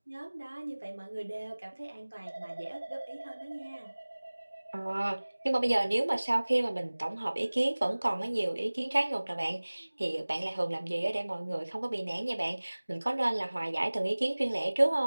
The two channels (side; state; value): both; inverted; correlation -1.00